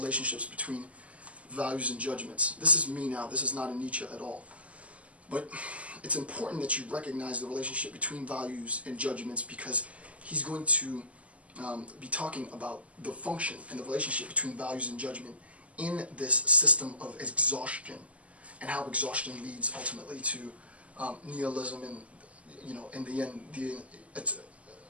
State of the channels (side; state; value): left; late; 0.067 ms